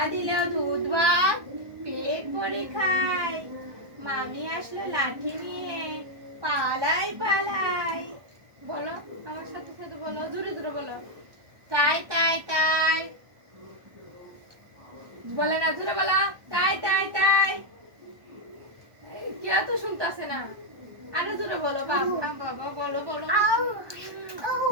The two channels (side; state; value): left; late; 1.2 ms